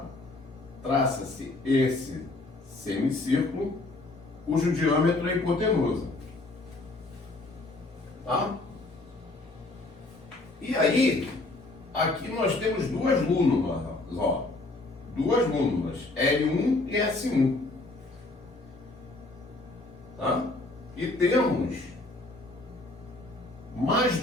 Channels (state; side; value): quieter; right; 3.0 dB